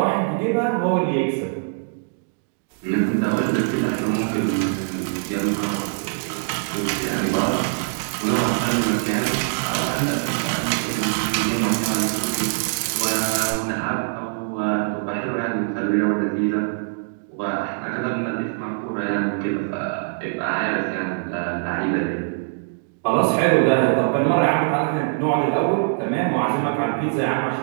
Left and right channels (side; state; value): left; silent; digital silence